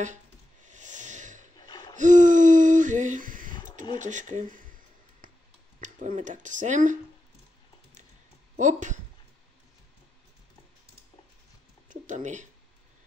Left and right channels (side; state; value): both; normal; correlation 0.89